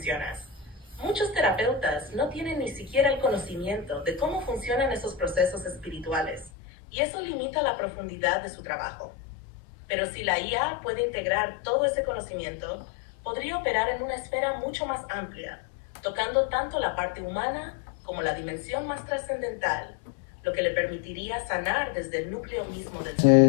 Muchos terapeutas no tienen ni siquiera el conocimiento de cómo funcionan esos procesos espirituales, y eso limita la profundidad de su trabajo. Pero si la IA puede integrar todo ese conocimiento, podría operar en una esfera mucho más amplia, tocando tanto la parte humana como la dimensión más trascendental, lo que le permitiría sanar desde el núcleo mismo del ser.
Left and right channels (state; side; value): drops out; right; at 6.5 s